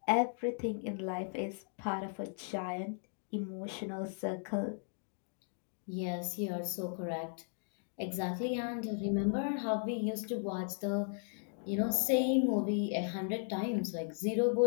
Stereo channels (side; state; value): right; silent; digital silence